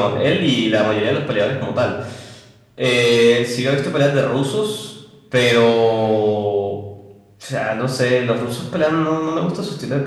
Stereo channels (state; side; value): identical; both; correlation 1.00